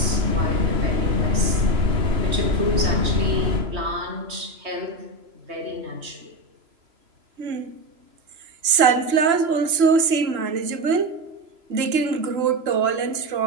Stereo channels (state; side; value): late; left; 3.0 ms